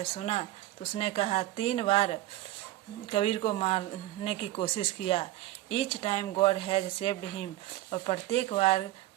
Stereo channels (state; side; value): quieter; left; 15.8 dB